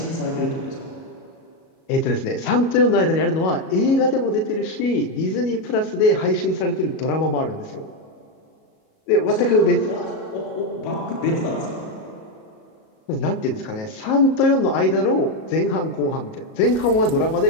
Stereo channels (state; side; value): late; right; 37 ms